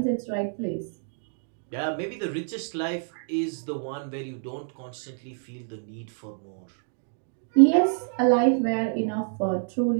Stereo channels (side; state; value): left; silent; digital silence